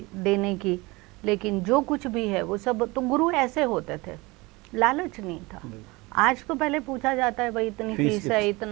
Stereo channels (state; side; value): quieter; left; 23.4 dB